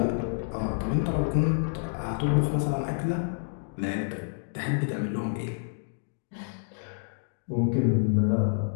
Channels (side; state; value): right; silent; digital silence